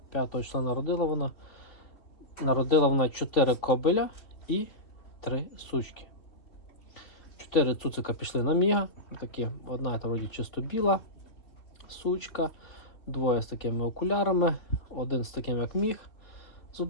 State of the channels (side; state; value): right; late; 3.1 ms